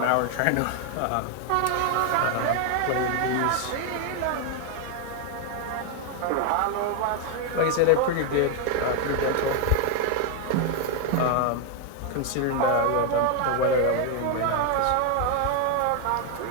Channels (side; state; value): both; different; correlation 0.01